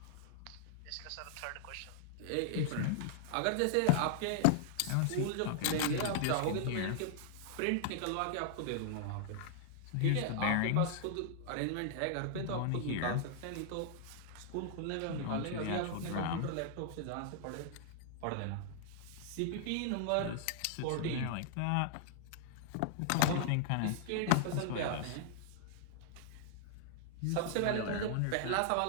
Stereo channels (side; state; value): both; different; correlation -0.01